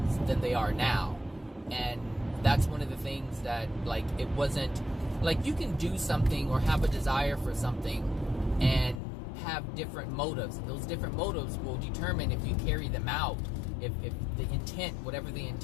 than they are now. And that's one of the things that, like, it wasn't like you can do something or have a desire for something and have different motives. Those different motives will determine if you carry them out. If the intent, whatever the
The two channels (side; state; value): right; drops out; at 9.0 s